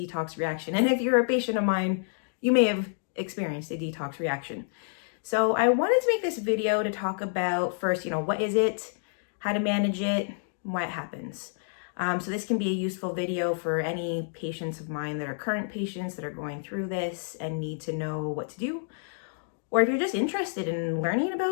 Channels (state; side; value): silent; right; digital silence